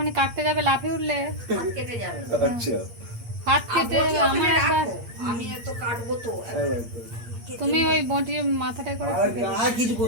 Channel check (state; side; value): late; left; 8.6 ms